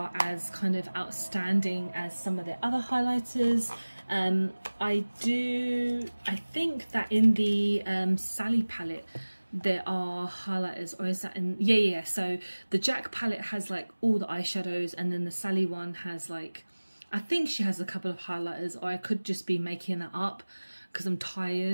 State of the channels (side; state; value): both; inverted; correlation -1.00